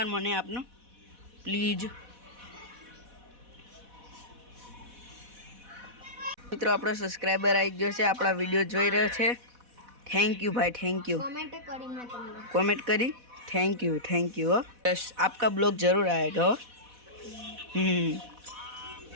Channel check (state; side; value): late; left; 4.1 ms